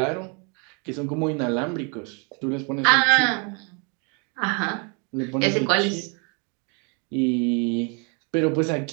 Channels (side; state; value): left; quieter; 34.9 dB